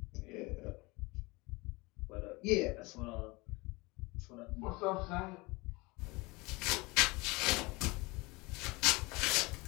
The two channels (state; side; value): quieter; right; 24.3 dB